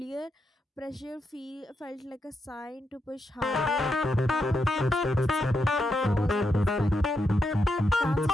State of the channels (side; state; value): both; normal; correlation 0.83